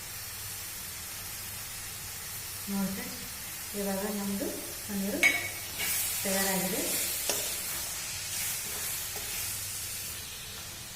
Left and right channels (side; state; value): both; identical; correlation 1.00